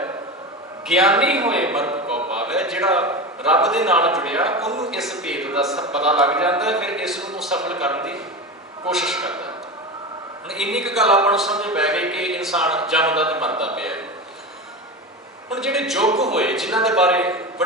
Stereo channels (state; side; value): normal; both; correlation 0.24